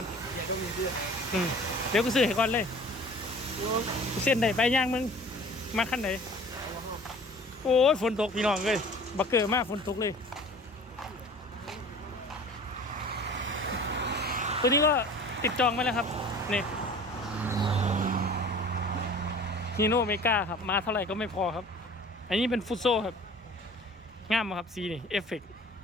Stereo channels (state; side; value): normal; both; correlation 0.45